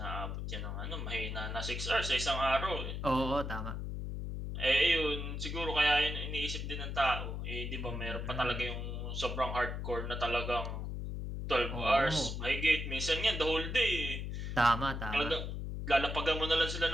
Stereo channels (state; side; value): noise; left; hum, 4 dB below the sound